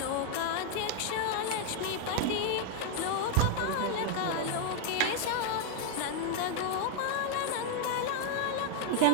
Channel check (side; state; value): both; different; correlation 0.00